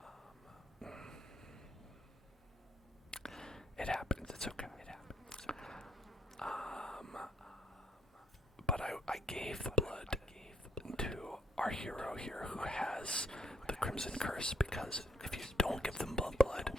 It happens, it's okay. But I gave the blood to our hero here who has the Crimson Curse, because if you don't give them blood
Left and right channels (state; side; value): normal; both; correlation 0.70